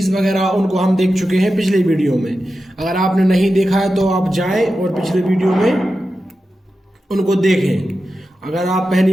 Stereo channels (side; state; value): both; normal; correlation 0.91